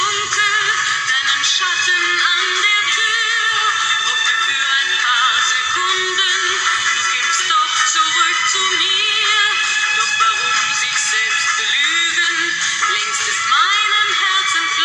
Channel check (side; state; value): both; identical; correlation 1.00